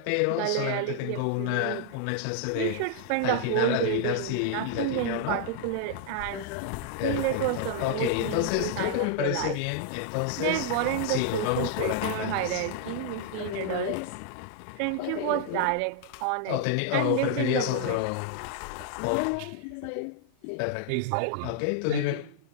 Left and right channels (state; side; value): different; both; correlation -0.01